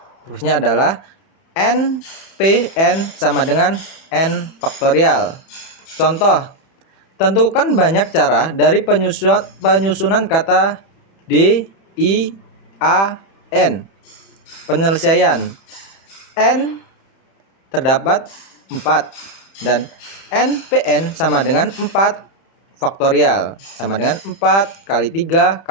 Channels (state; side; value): late; right; 31 ms